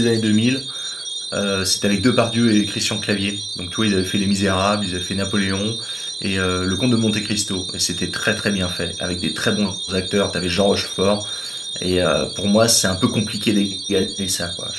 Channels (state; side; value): normal; both; correlation 0.98